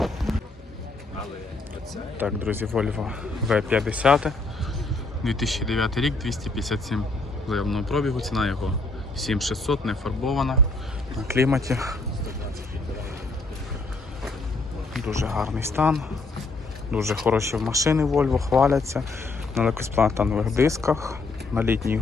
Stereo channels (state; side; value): quieter; right; 3.4 dB